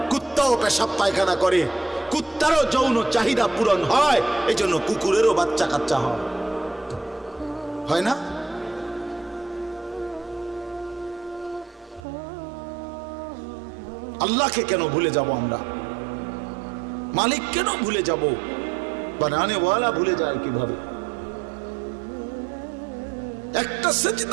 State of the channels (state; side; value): drops out; left; at 12.1 s